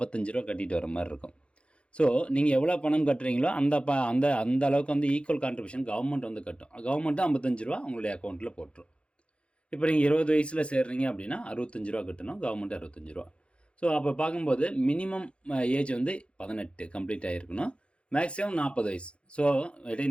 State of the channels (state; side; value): late; right; 0.059 ms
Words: ரூபா கட்டிட்டு வர மாதிரி இருக்கும். ஸோ நீங்கள் எவ்வளோ பணம் கட்டுறீங்களோ அந்த அளவுக்கு வந்து ஈக்குவல் கான்ட்ரிபியூஷன் கவர்மெண்ட் வந்து கட்டும். கவர்மெண்ட்டு 55 ரூபா உங்களுடைய அக்கௌண்ட்டில் போட்டுரும். இப்போ நீங்கள் 20 வயசில் சேர்றீங்க அப்படின்னா 65 ரூபா கட்டணும், கவர்மெண்ட் 65 ரூபா. ஸோ அப்போ பார்க்கும்போது மினிமம் ஏஜ் வந்து 18 கம்ப்ளீட் ஆகிருக்கணும், மேக்ஸிமம் 40 வயசு. ஸோ